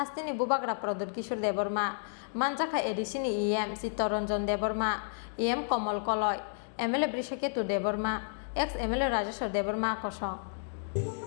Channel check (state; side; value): silent; right; digital silence